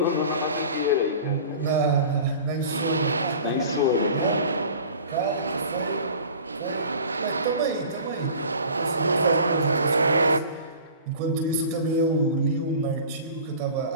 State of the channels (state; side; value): inverted; both; correlation -0.42